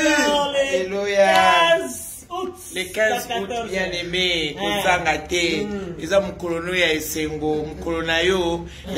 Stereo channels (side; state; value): both; identical; correlation 1.00